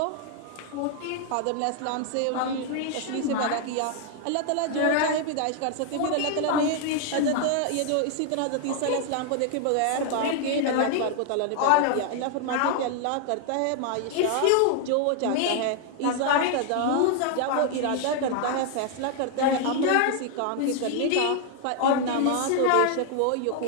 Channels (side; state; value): both; different; correlation 0.00